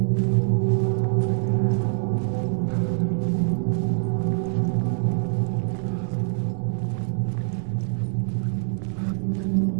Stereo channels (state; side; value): silent; left; 62 dB below the other